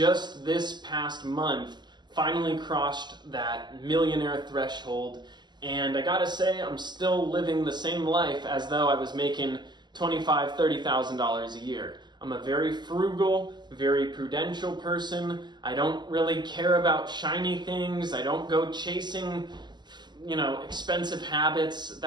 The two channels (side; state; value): left; late; 0.21 ms